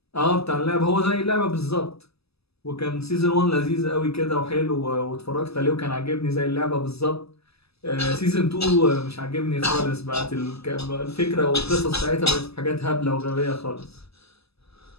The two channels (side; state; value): right; late; 0.78 ms